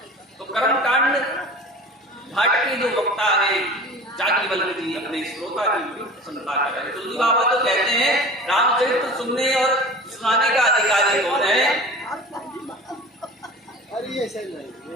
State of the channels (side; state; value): both; normal; correlation 0.38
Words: तो कर्म कांड घाट के जो वक्ता है याज्ञवल्क्य जी अपने श्रोता की बड़ी प्रसन्नता कर रहे हैं। तुलसी बाबा तो कहते हैं रामचरित्र सुनने और सुनाने का अधिकारी कौन है?